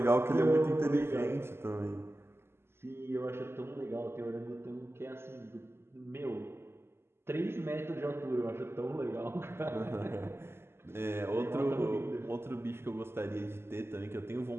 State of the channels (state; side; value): late; left; 0.12 ms